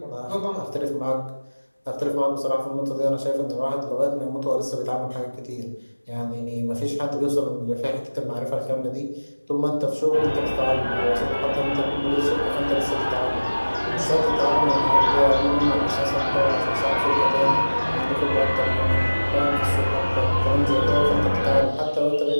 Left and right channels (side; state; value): both; inverted; correlation -1.00